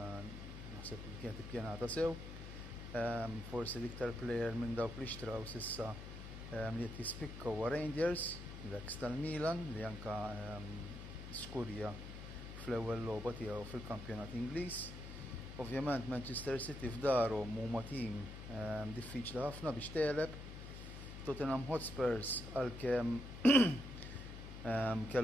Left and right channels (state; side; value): noise; left; hum, 10 dB below the sound